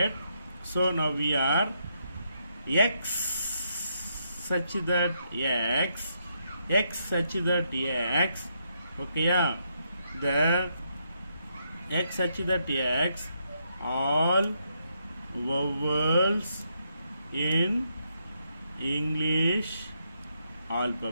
So now we are x such that x such that x. Okay, yeah. The x such that x, all vowels in English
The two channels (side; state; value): both; inverted; correlation -0.78